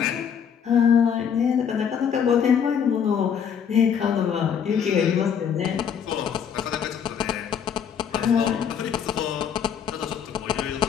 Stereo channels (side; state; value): right; quieter; 7.8 dB